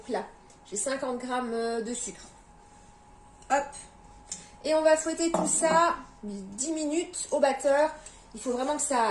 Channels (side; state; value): both; identical; correlation 1.00